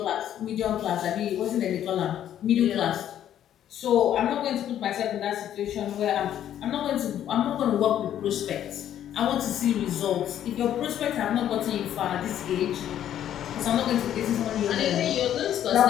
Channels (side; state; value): right; quieter; 10.8 dB